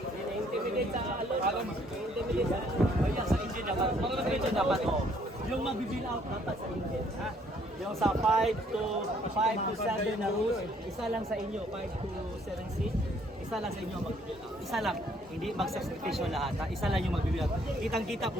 Intimidate sa alon. Intimidate sa kaya sa engine dapat. Mga engine dapat. Yung mag-bill out dapat sa engine. Ha? Yung sa 5 to 7 na rules, isa lang sa inyo, 5 to 7 seat, isa lang sa inyo mag-bill out. Isa lang, hindi mag-sacrifice lahat, ha? Isa lang yung mag-bill out. Kitang-kita,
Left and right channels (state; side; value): normal; both; correlation 0.64